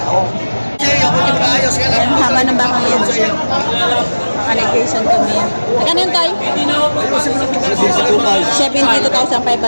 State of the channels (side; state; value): both; inverted; correlation -1.00